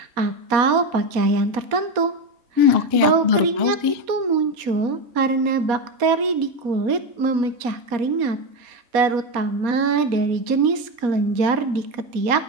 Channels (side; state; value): left; late; 4.2 ms